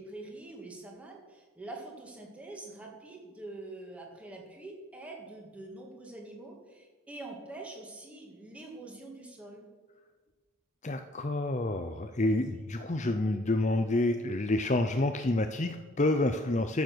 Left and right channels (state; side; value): normal; both; correlation 0.63